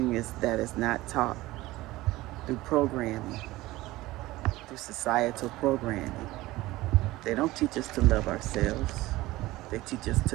that is not taught through programming, through societal programming. They don't teach us to love ourselves. They teach us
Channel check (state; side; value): quieter; left; 18.3 dB